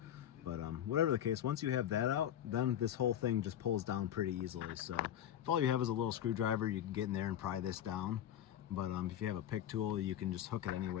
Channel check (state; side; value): quieter; right; 10.7 dB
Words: But whatever the case, once you have that out, then this whole thing just pulls down pretty easily. So if all you have is a little screwdriver, you can get in there and pry this down. But if you have a pick tool, you can just hook it any